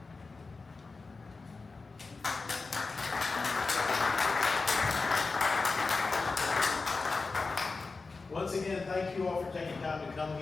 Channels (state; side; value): quieter; right; 4.0 dB